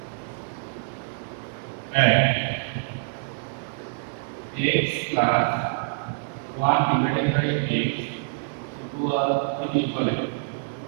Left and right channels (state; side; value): silent; left; digital silence